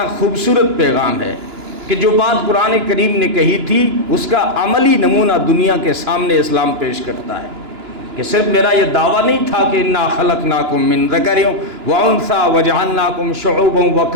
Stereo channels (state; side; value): late; left; 2.9 ms